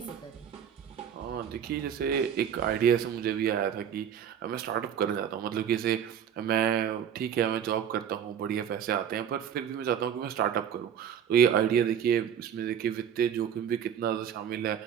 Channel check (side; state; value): left; quieter; 8.7 dB